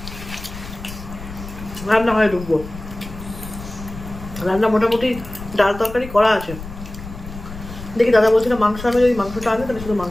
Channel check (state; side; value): noise; left; rumble, 12 dB below the sound